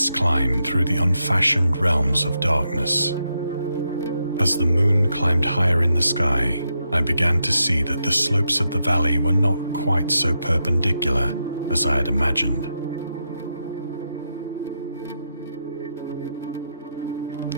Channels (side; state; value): both; inverted; correlation -0.83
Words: climb through the unfashioned realms of darkness. As the moon climbed higher in the sky, I began to see that the slopes of the valley were not quite so perpendicular as I had imagined.